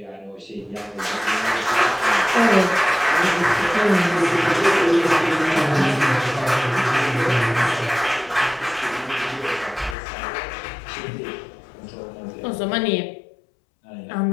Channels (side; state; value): right; drops out; at 10.0 s